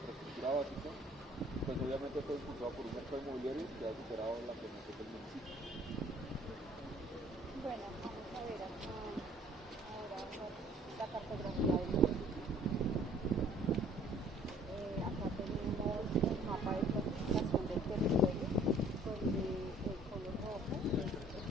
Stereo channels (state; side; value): normal; both; correlation 0.56